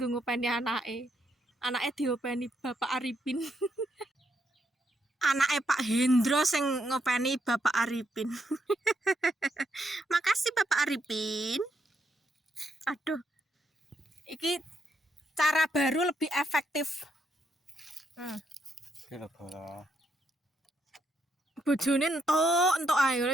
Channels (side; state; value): both; normal; correlation 0.77